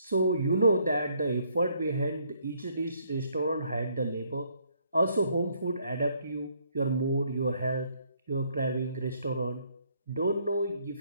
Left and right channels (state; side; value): inverted; both; correlation -0.68